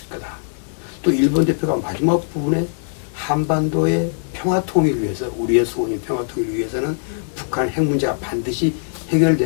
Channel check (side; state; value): right; silent; digital silence